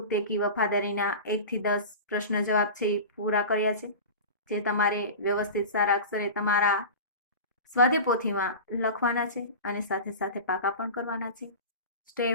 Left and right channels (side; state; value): both; inverted; correlation -0.31